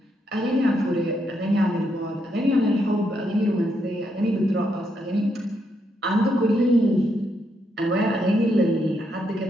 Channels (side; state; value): both; normal; correlation 0.78